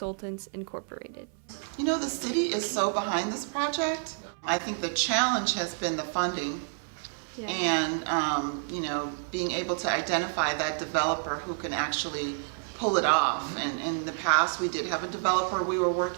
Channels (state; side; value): silent; left; 57 dB below the other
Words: Incorporated. The city is so behind this project. I think the challenge has been the funding and, being able to identify that developer who can actually pull it off. And in the past, we did have a developer we were